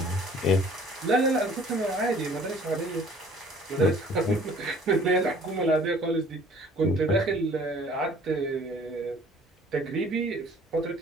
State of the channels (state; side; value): normal; both; correlation 0.53